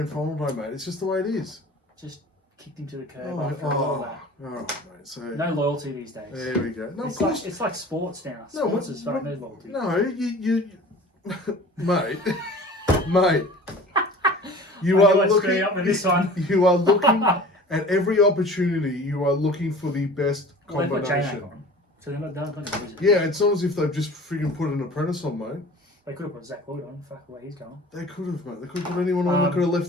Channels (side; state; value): both; normal; correlation 0.42